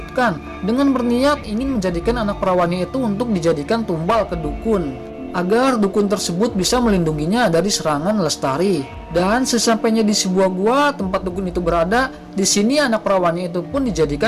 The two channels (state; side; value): identical; both; correlation 1.00